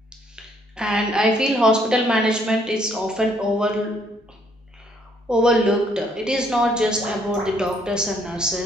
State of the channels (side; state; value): both; normal; correlation 0.67